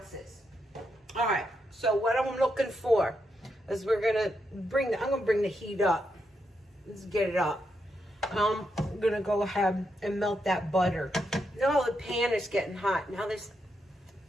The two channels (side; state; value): both; normal; correlation 0.82